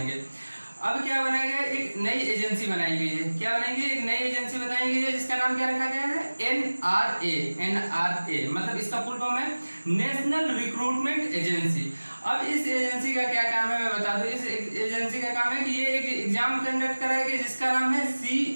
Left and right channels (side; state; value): both; inverted; correlation -1.00